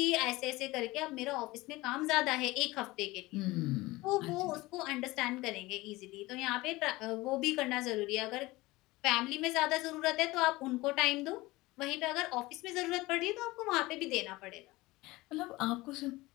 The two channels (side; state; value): right; quieter; 20.3 dB